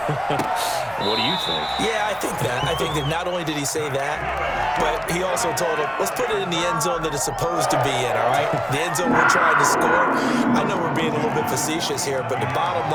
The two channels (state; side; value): identical; both; correlation 1.00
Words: What do you think? Yeah, I think that. I think that not only did he say that, but he also told him, let's put it in the end zone that it's supposed to be in, all right? The end zone we're trying to score. I know we're being a little bit facetious here, but the bottom